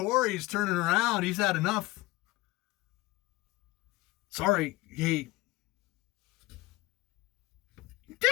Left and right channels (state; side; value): quieter; right; 20.1 dB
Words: turning around. He's had enough. Sorry. Hey.